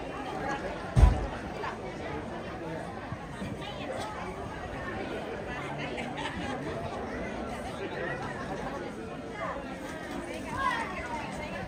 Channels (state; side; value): identical; both; correlation 1.00